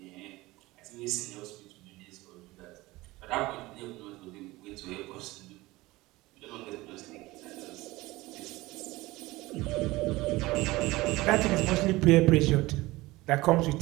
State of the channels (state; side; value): quieter; left; 19.9 dB